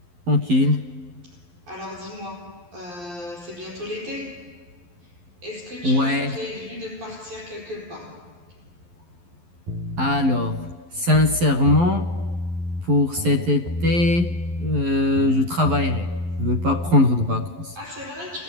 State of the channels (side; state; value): left; late; 11 ms